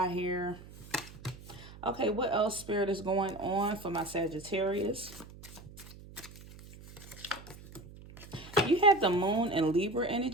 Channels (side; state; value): right; noise; hum, 18 dB below the sound